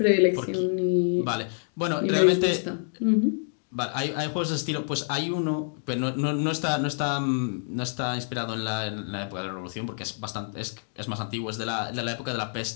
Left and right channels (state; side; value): silent; right; digital silence